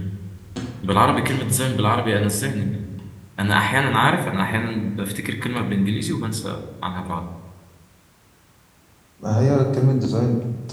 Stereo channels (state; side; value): identical; both; correlation 1.00